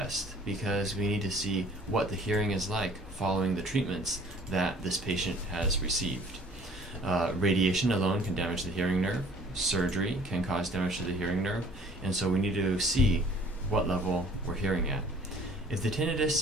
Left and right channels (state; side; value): normal; both; correlation 0.53